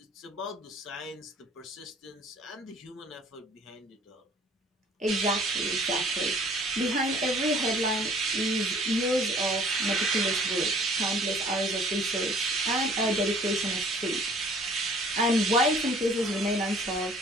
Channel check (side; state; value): both; normal; correlation 0.54